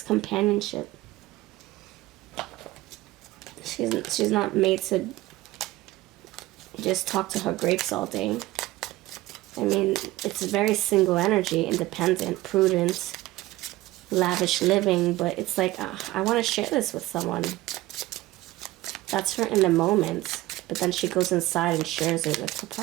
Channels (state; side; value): quieter; left; 17.7 dB